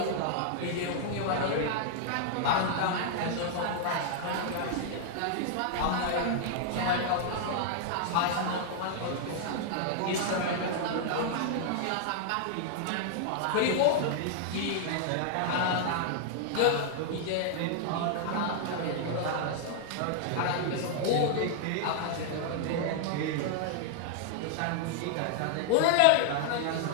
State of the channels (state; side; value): different; both; correlation -0.01